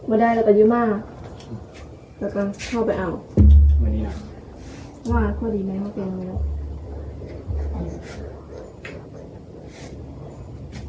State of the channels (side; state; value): both; identical; correlation 1.00